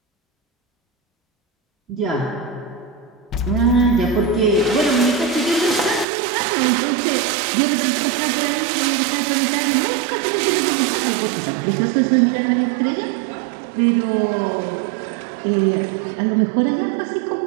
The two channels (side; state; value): left; drops out; at 6.1 s